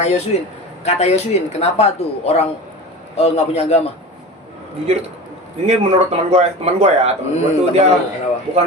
Yosuin, kata Yosuin, kenapa tuh orang nggak punya agama? Jujur ini menurut teman gue ya, teman gue tuh teman dia lu, kenapa? bukan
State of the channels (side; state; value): both; normal; correlation 0.32